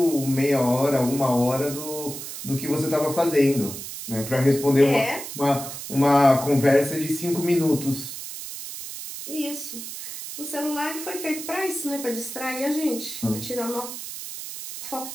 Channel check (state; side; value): noise; right; hiss, 9 dB below the sound